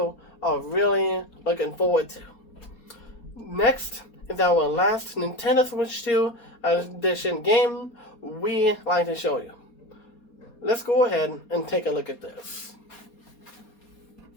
are really looking forward to. Next is our last Nintendo Switch 2 Edition game we like to show you. Let's go ahead and take a look at this.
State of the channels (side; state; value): right; late; 4.2 ms